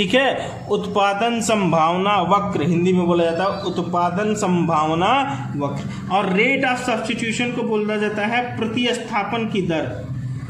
है। उत्पादन संभावना वक्र हिंदी में बोला जाता है उत्पादन संभावना वक्र। और रेट ऑफ सब्स्टिट्यूशन को बोला जाता है प्रतिस्थापन की दर,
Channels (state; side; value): identical; both; correlation 1.00